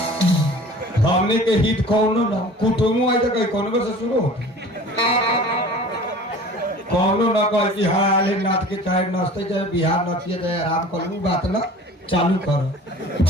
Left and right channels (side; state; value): both; normal; correlation 0.43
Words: हमने के हित कौनो ना कुटुम्ब आई तो कहीं कौन से शुरू हो कौनो ना कह कि हाँ आले नाथ के चाहे नचते चाहे बिहार नचिए चाहे आराम करूँ बात ना चालू करो